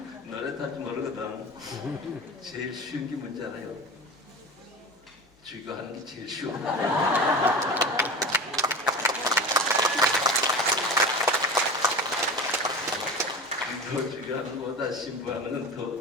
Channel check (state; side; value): normal; both; correlation 0.31